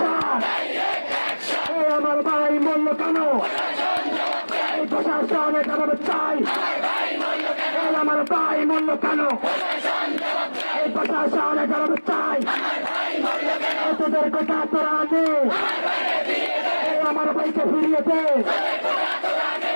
আমার ভাই মূল্য কেন প্রশাসনে জবাব চাই আমার ভাই মূল্য কেন প্রশাসনে জবাব চাই তোদের কথা তোরা নেই আমার ভাইকে ফিরিয়ে দে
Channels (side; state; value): both; inverted; correlation -1.00